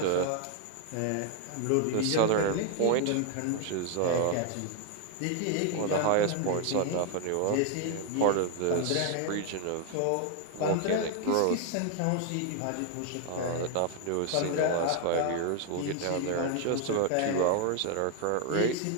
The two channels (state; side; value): different; both; correlation 0.00